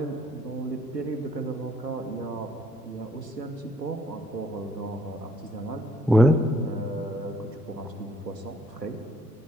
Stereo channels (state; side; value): normal; both; correlation 0.67